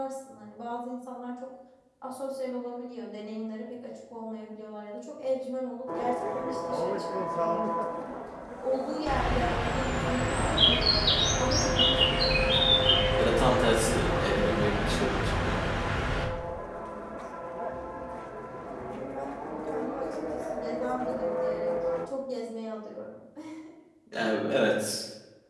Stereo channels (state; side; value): identical; both; correlation 1.00